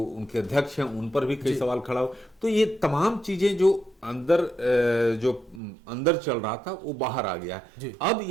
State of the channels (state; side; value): drops out; left; at 5.6 s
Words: अध्यक्ष हैं, उन पर भी कई सवाल खड़ा हो। तो ये तमाम चीजें जो अंदर चल रहा था वो बाहर आ गया है। अब